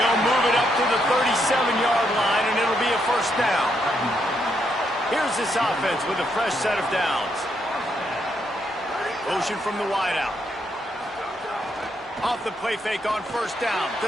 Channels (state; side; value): normal; both; correlation 0.77